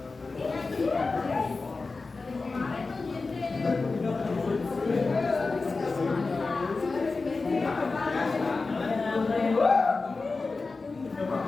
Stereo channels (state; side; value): quieter; right; 3.9 dB